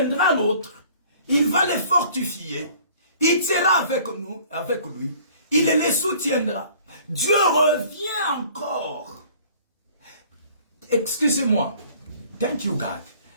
l'autre. Il va les fortifier. Il sera avec nous, avec lui. Il les soutiendra. Dieu revient encore. Excusez-moi. Thank you, God.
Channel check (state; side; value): inverted; both; correlation -0.52